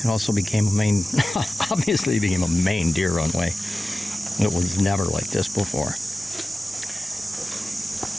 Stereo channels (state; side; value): normal; both; correlation 0.96